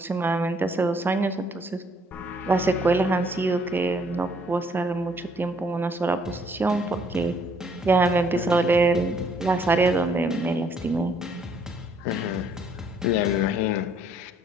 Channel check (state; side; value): normal; both; correlation 0.65